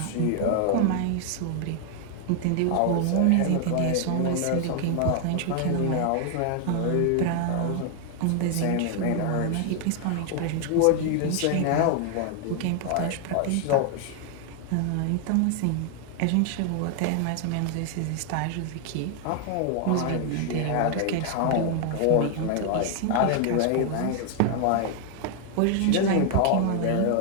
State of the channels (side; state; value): both; different; correlation 0.00